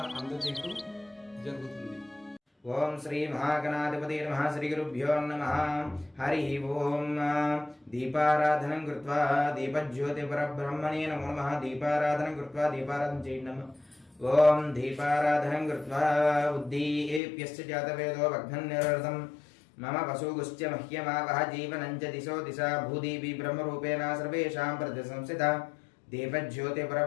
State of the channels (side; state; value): right; drops out; at 17.2 s